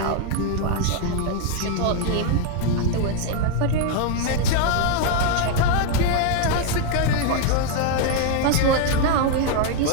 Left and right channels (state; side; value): different; both; correlation 0.00